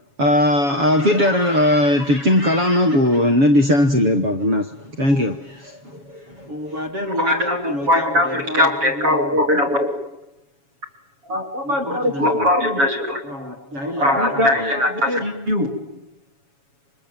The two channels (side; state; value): left; late; 7.2 ms